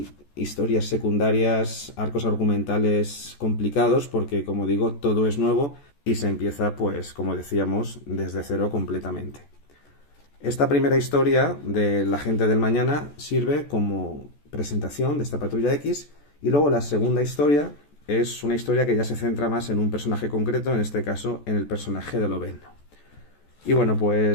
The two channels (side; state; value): right; late; 14 ms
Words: historias secundarias, arcos argumentales complicados, porque, como digo, todo es nuevo y se empieza, pues, como decíamos, desde cero completamente. Esta primera historia de La Gente del Mañana sirve como presentación de esta Patrulla X, y luego la segunda historia es una historia que ya se centra más en un personaje concreto, en este caso en el personaje de Lobezno. Y bueno,